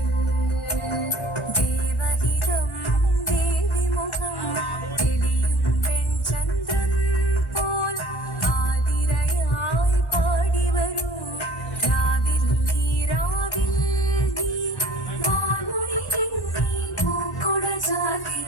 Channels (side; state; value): both; normal; correlation 0.50